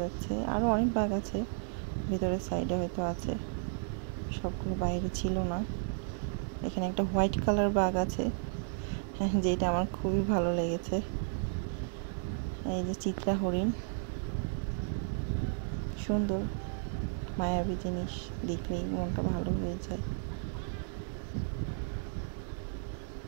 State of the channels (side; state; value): left; silent; digital silence